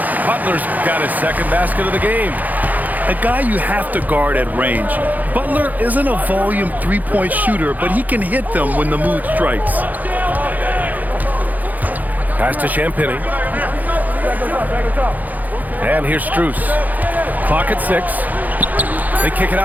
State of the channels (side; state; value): left; late; 0.081 ms